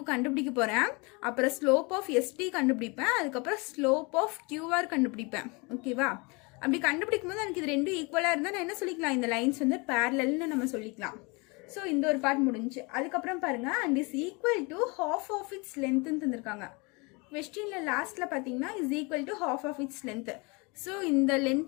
கண்டுபிடிக்க போகிறேன், அப்புறம் ஸ்லோப் ஆஃப் ST கண்டுபிடிப்பேன், அதுக்கப்புறம் ஸ்லோப் ஆஃப் QR கண்டுபிடிப்பேன், ஓகேவா? அப்படி கண்டுபிடிக்கும் போது எனக்கு இது ரெண்டும் ஈக்குவலாக இருந்தால் நான் என்ன சொல்லிக்கலாம், இந்த லைன்ஸ் வந்து பேரலல்னு நம்ம சொல்லிக்கலாம். ஸோ இந்த ஒரு பார்ட் முடிஞ்சு. அதுக்கப்புறம் பாருங்கள், and is equal to half of its லென்த்துன்னு தந்திருக்காங்க. கொஸ்டினில் லாஸ்ட்டில் பார்த்தீங்கன்னா is equal to half of its length. So இந்த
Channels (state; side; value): quieter; right; 28.7 dB